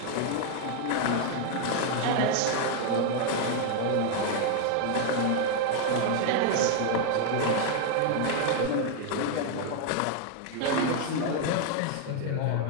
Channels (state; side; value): different; both; correlation 0.00